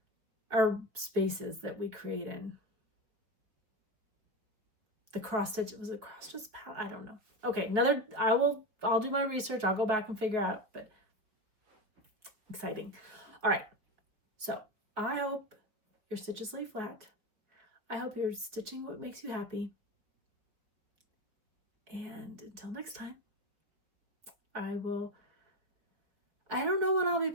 Our spaces that we create in. The cross stitch, was it cross stitch? I don't know. Okay, I'll do my research. I'll go back and figure out, but exciting. All right, so I hope your stitches lay flat. I hope you're stitching what makes you happy. And until next time, I don't know when I'll be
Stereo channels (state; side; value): late; left; 4.7 ms